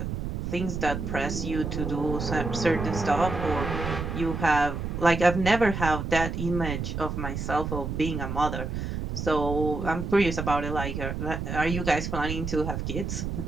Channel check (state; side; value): noise; right; rumble, 4 dB below the sound